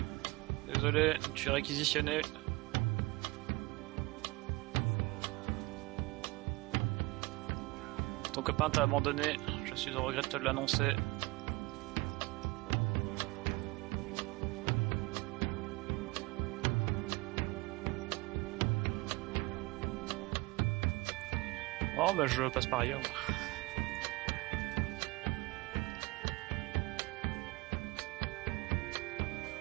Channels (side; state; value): left; quieter; 23.6 dB